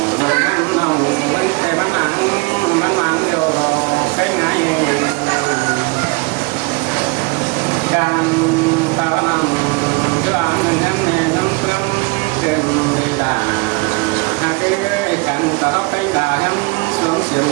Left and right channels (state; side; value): quieter; left; 27.6 dB